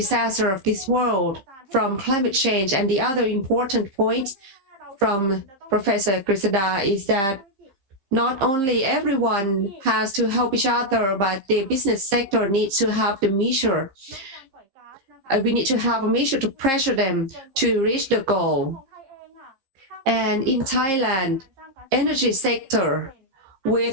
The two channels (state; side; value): late; left; 15 ms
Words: of this world from climate change. And the other important point from Professor Grisada is that not only everyone has to help each other, but the business sector needs to have the measure. We need to have a measure to pressure them to reach the goal. And in Thailand, energy sector